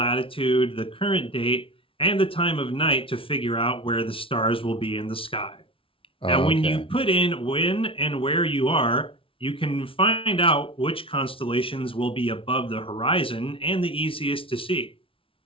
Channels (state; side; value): late; right; 0.26 ms